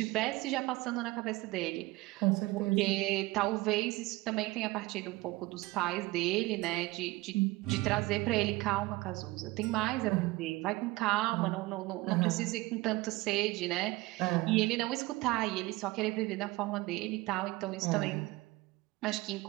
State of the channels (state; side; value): quieter; left; 20.6 dB